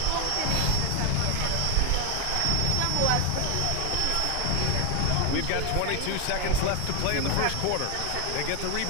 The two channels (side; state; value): both; different; correlation 0.01